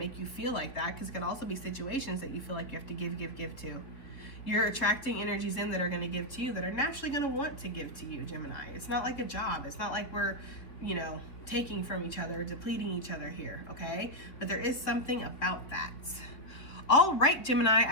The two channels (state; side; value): late; right; 3.4 ms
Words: you feel like that, because it can also be situations that you feel like you have to give to. You're attracting energies in that are going to give to you, that are naturally going to want to give to you, Gemini. It's not like a job. It's not like we're, you know, taking from each other, depleting each other here, okay? But there is something about that. All right, Gemini,